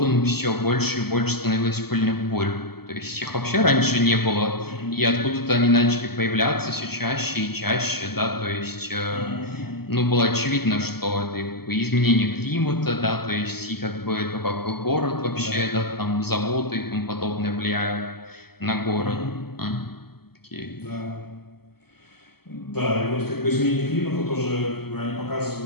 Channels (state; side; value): late; right; 0.96 ms